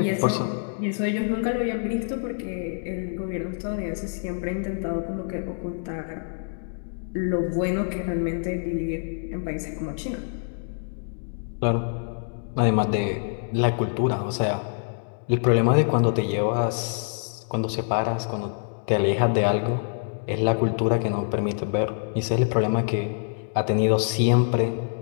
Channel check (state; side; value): silent; right; digital silence